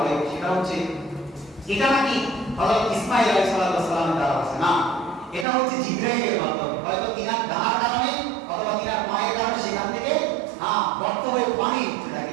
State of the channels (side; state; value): left; drops out; at 5.5 s